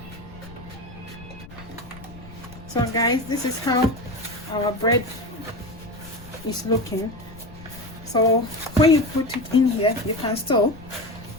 So guys, this is how our bread is looking. So when you put it in here, you can still,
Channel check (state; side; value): noise; left; rumble, 17 dB below the sound